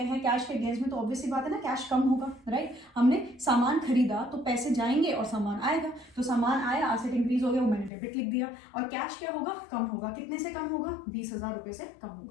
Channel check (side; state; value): right; drops out; at 7.9 s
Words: हैं कैश के अगेंस्ट में, तो ऑब्वियसली बात है ना, कैश कम होगा, राइट। हमने सामान खरीदा तो पैसे जाएंगे और सामान आएगा, तो सामान आया, असेट इंक्रीज हो गया, वो मैंने डेबिट लिख दिया। और कैश क्या होगा, कम होगा। कितने से कम होगा, 20,000 रुपए से कम